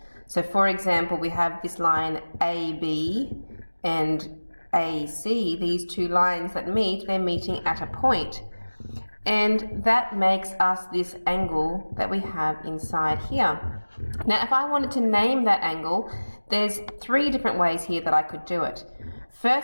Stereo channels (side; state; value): both; inverted; correlation -1.00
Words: So for example, we have this line AB and AC, these two lines that meet, they're meeting at a point. And that makes us this angle that we have inside here. Now, if I wanted to name that angle, there's three different ways here that I could do it.